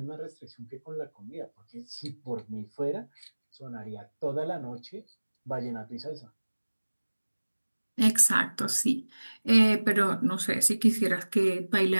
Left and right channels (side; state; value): both; inverted; correlation -1.00